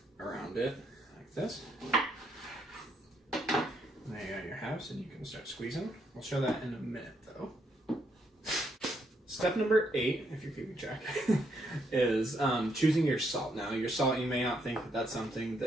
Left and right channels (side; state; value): both; normal; correlation 0.75